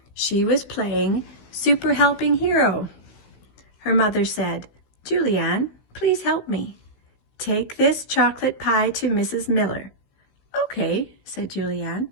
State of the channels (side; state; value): right; late; 16 ms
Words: She was playing Super Helping Hero. Her mother said, "Julianne, please help me. Take this chocolate pie to Mrs. Miller." "Okay," said Julianne.